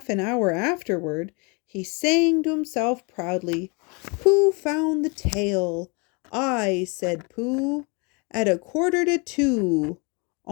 an hour afterward, he sang to himself proudly, Pooh found the tail. I, said Pooh, at 1:45.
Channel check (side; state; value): right; quieter; 31.3 dB